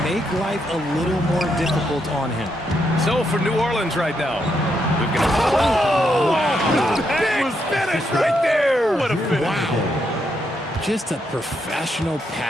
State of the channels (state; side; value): normal; both; correlation 0.79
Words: make life a little more difficult on him. So for New Orleans right now, we've got Wow. big finish right there. What a finish. Wow. Just a professional